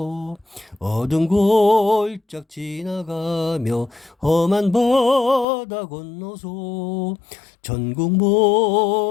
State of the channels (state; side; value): drops out; right; at 5.5 s